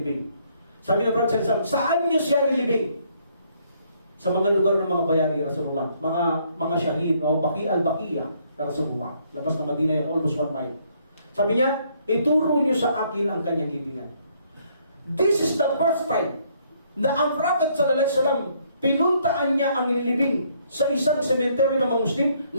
Sabi ng Prophet sallallahu alaihi wasallam, saan nyo siya nilibing? Sa mga lugar ng mga bayani, Rasulullah, mga syahid o Baqi al-Baqiya na Rasulullah, labas ng Madina yan, almost 1 mile. Sabi niya, ituro niyo sa akin ang kanyang libingan. This is the first time na ang Prophet sallallahu alaihi wasallam, pinuntaan niya ang nilibing sa isang sementeryo ng mga Muslim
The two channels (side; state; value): both; inverted; correlation -0.68